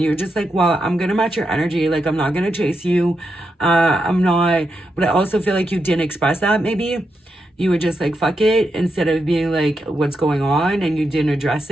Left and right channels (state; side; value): normal; both; correlation 0.84